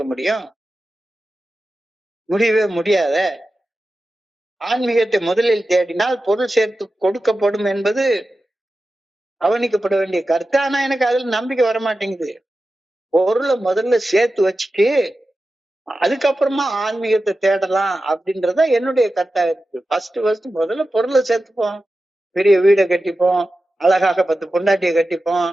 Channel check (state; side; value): normal; both; correlation 0.93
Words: முடியும்? முடியவே முடியாத. ஆன்மீகத்தை முதலில் தேடினால் பொருள் சேர்த்து கொடுக்கப்படும் என்பது கவனிக்கப்பட வேண்டிய கருத்து. ஆனா எனக்கு அதுல நம்பிக்கை வரமாட்டேங்குது. பொருளை முதல்ல சேர்த்து வச்சுட்டு அதுக்கப்புறமா ஆன்மீகத்தை தேடலாம் அப்படின்றத என்னுடைய கருத்தா இருக்கு. ஃபர்ஸ்ட் முதல்ல பொருளை சேர்த்துப்போம், பெரிய வீடை கட்டிப்போம், அழகாக 10 பொண்டாட்டியை கட்டிப்போம்,